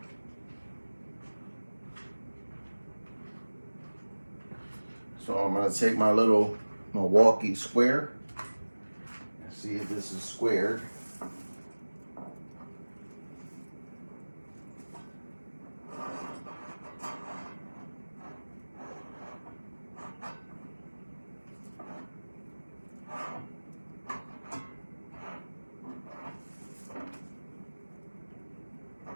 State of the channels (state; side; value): inverted; both; correlation -1.00